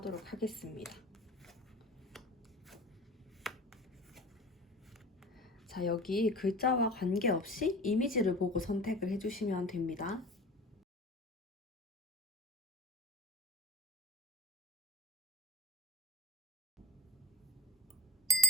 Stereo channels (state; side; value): normal; both; correlation 0.36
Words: 하겠습니다. 자, 여기 글자와 관계없이 이미지를 보고 선택을 해주시면 됩니다.